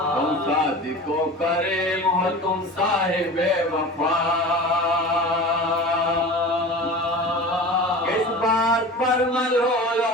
کو کریم ہو تم صاحب وفا کس بات پر ملول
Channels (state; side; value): normal; both; correlation 0.34